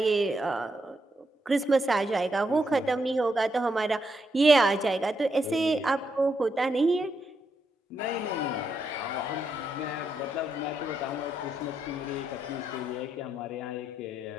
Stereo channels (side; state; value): both; normal; correlation 0.80